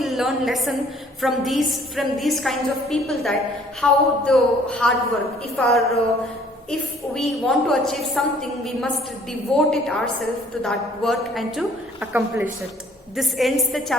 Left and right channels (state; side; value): normal; both; correlation 0.58